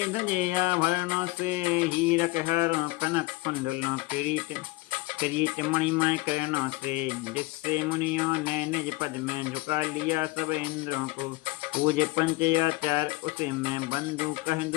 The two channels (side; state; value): right; quieter; 21.4 dB